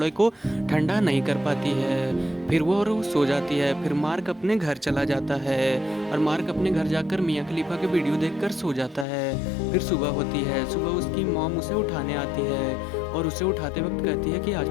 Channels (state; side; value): drops out; right; at 9.1 s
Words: को ठंडा नहीं कर पाती है। फिर वो सो जाती है। फिर मार्क अपने घर चला जाता है और मार्क अपने घर जाकर मियाँ खलीफा के वीडियो देखकर सो जाता है। फिर सुबह होती है। सुबह उसकी मॉम उसे उठाने आती है और उसे उठाते वक्त कहती है कि